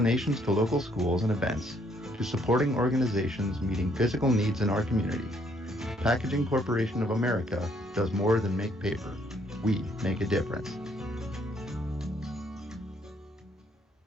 to local schools and events, to supporting organizations meeting physical needs in our community, Packaging Corporation of America does more than make paper. We make a difference.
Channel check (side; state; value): both; normal; correlation 0.68